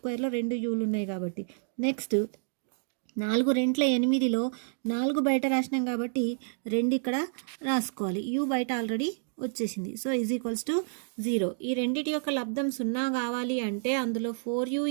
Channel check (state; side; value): silent; left; digital silence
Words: 2 uలు ఉన్నాయి కాబట్టి. నెక్స్ట్ 4 2 8లో 4 బయట రాసినాం కాబట్టి 2 ఇక్కడ రాసుకోవాలి. u బయట ఆల్రెడీ వచ్చేసింది. So is equals to 0. ఈ రెండిటి యొక్క లబ్ధం 0 కావాలి అంటే అందులో 4u